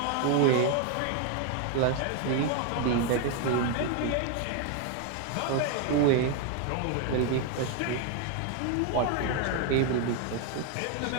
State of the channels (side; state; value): both; different; correlation 0.01